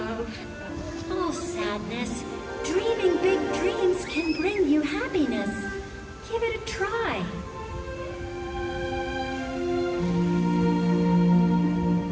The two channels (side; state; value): both; identical; correlation 1.00